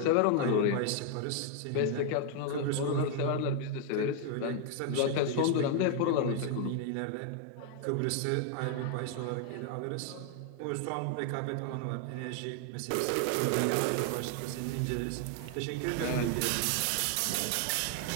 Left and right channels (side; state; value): both; different; correlation 0.00